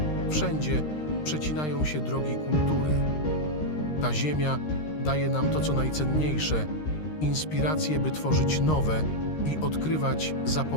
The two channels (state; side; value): late; right; 13 ms